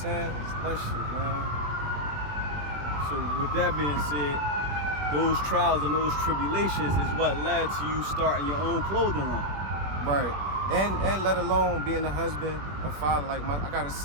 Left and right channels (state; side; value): late; left; 20 ms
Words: It's that shit, man. So with that being said, those trials and those tribulations is what led to you starting your own clothing line. Right. And let alone being a husband, a father. Like, I got a